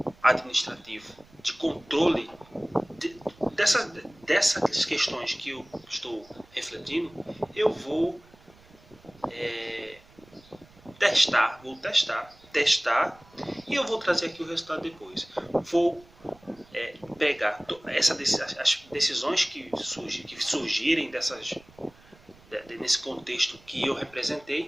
administrativo de controle dessas questões que eu estou refletindo, eu vou vou testar e eu vou trazer aqui o resultado depois. Vou pegar as decisões que surgirem nesse contexto que eu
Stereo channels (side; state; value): right; noise; rumble, 26 dB below the sound